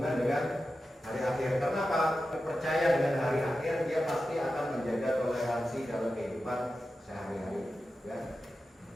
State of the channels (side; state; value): both; normal; correlation 0.92